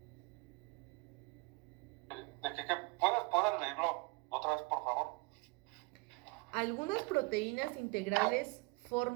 ¿De qué puedes leerlo otra vez, por favor? Algunas proteínas integrales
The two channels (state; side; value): quieter; left; 27.8 dB